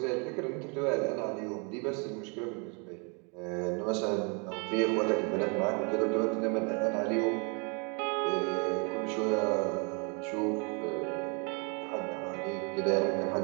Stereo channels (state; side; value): quieter; left; 34.9 dB